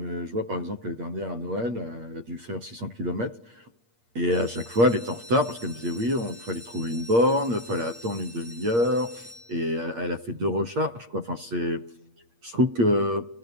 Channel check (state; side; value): late; left; 8.6 ms